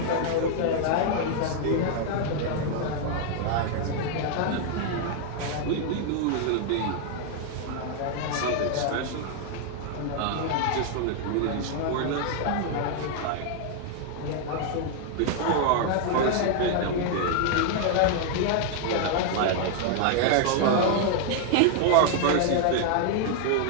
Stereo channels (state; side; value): different; both; correlation 0.00